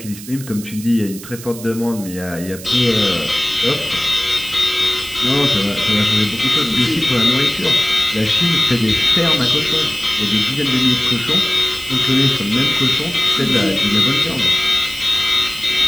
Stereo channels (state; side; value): noise; right; hiss, 15 dB below the sound